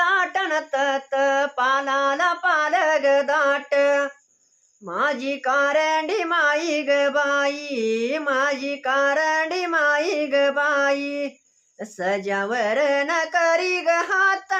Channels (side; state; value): both; identical; correlation 1.00